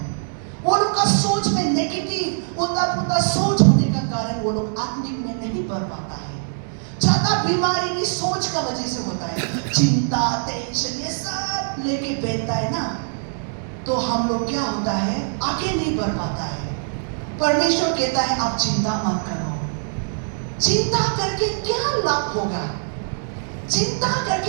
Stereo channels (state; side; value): silent; left; digital silence